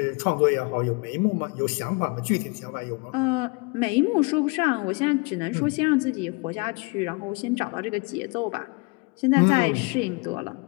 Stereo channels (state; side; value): quieter; right; 29.7 dB